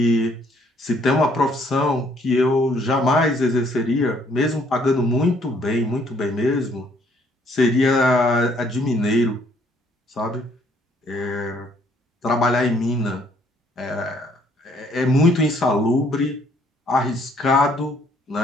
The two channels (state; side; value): normal; both; correlation 0.65